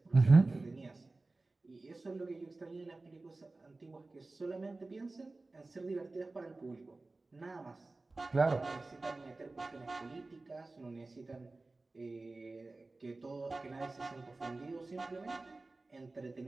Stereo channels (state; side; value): quieter; left; 3.3 dB